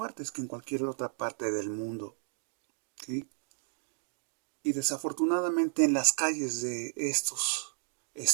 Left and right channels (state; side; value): silent; left; digital silence